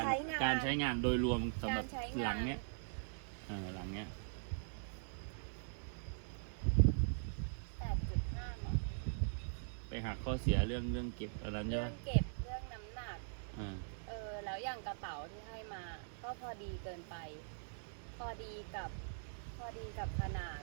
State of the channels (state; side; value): silent; left; digital silence